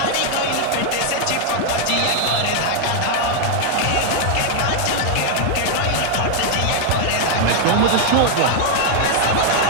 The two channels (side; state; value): both; different; correlation 0.00